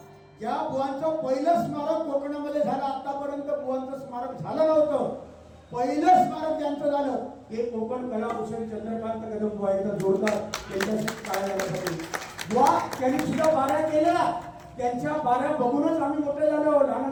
ज्या बुवांचं पहिलं स्मारक कोकणामध्ये झालं, आतापर्यंत बुवांचं स्मारक झालं नव्हतं. पहिलं स्मारक ज्यांचं झालं हे कोकण कलाभूषण चंद्रकांत कदम बुवा इथं जोडतात. त्यांच्याशी काय झाल्यासाठी बुवा त्यांनी सुद्धा बाऱ्या केल्या. त्यांच्या बाऱ्या बघूनच आम्ही मोठे झालो,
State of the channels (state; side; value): identical; both; correlation 1.00